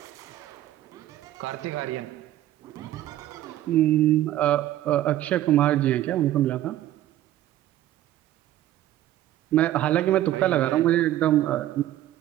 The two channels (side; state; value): left; quieter; 13.6 dB